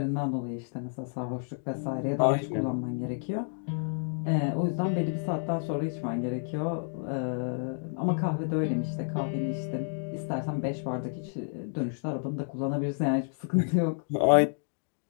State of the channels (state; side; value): silent; right; digital silence